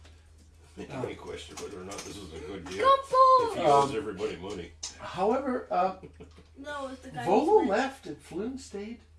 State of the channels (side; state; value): both; identical; correlation 1.00